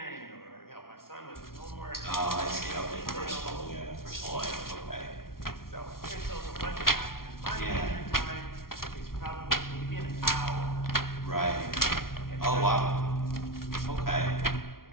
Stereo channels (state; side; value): late; right; 0.93 ms